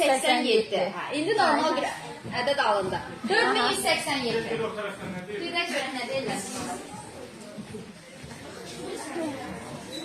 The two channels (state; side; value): identical; both; correlation 1.00